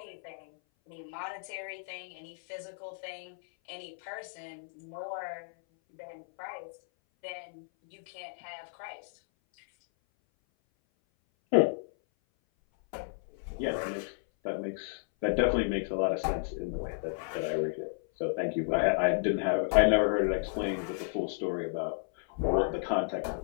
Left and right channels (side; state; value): right; silent; 56 dB below the other